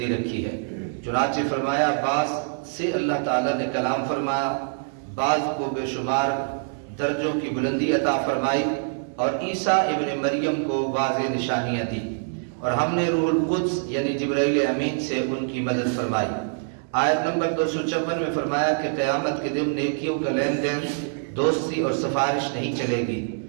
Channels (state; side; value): silent; left; digital silence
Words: رکھی ہے۔ چنانچہ فرمایا بعض سے اللہ تعالیٰ نے کلام فرمایا، بعض کو بے شمار درجوں کی بلندی عطا فرمائی، اور عیسیٰ ابن مریم کو واضح نشانیاں دی، اور ہم نے روح القدس یعنی جبرائیل امین سے ان کی مدد فرمائی۔ آیت نمبر 254 میں فرمایا کہ قیامت کے دن نیکیوں کا لین دین، دوستی اور سفارش نہیں چلے گی،